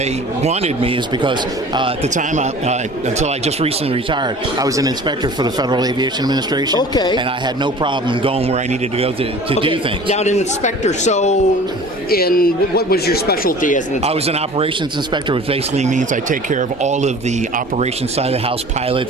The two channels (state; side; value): normal; both; correlation 0.44